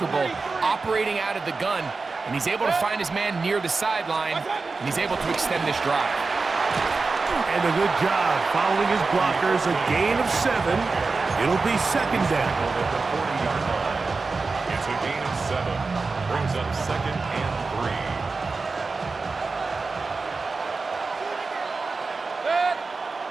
operating out of the gun, and he's able to find his man near the sideline, and he's able to extend this drive. And a good job following his blockers. A gain of 7. It'll be 2nd down. It's a gain of 7. Brings up 2nd and 3.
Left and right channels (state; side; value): quieter; left; 4.1 dB